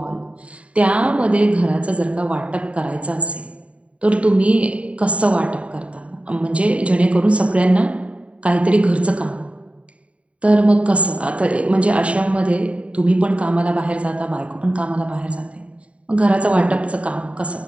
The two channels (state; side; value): late; left; 0.064 ms